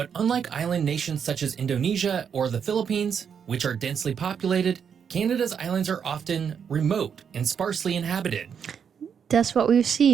unlike island nations such as Indonesia or the Philippines, which are densely populated, Canada's islands are often remote and sparsely inhabited. That's what we've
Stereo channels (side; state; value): left; quieter; 7.3 dB